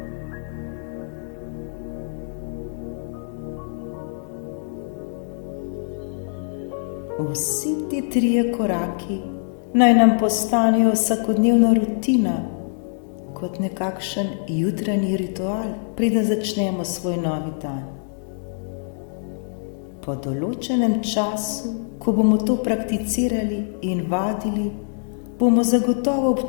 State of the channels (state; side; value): silent; right; digital silence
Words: Vsi ti 3 koraki naj nam postanejo vsakodnevna rutina, kot nekakšen jutranji ritual, preden začnemo svoj novi dan. Po določenem času, ko bomo to prakticirali in vadili, bomo zagotovo